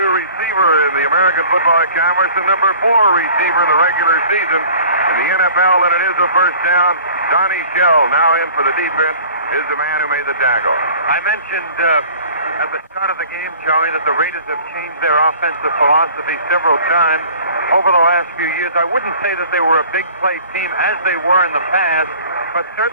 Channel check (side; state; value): both; inverted; correlation -0.47